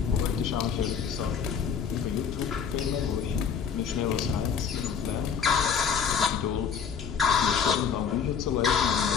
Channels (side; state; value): right; quieter; 6.9 dB